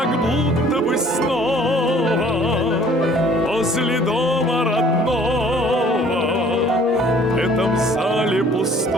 будто бы снова возле дома родного. В этом зале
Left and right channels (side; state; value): both; normal; correlation 0.55